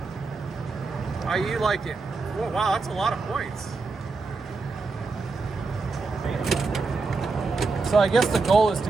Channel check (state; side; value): quieter; left; 4.1 dB